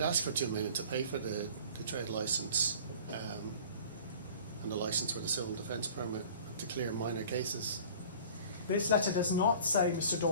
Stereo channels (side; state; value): both; inverted; correlation -0.45